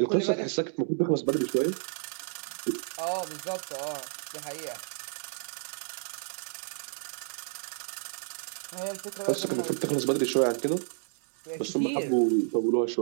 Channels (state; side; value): silent; left; digital silence